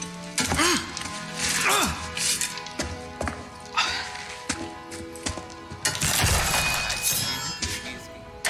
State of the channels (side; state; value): both; identical; correlation 1.00